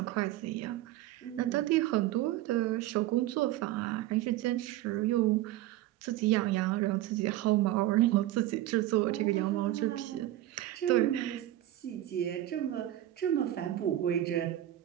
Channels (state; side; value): quieter; left; 14.4 dB